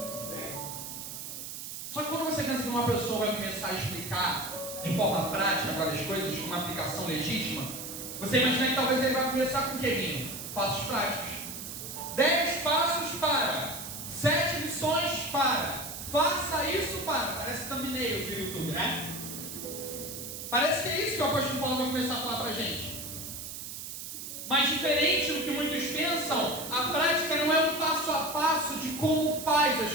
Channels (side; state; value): right; noise; hiss, 8 dB below the sound